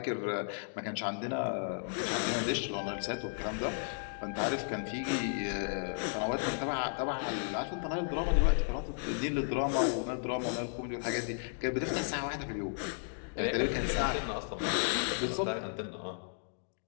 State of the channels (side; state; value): right; silent; digital silence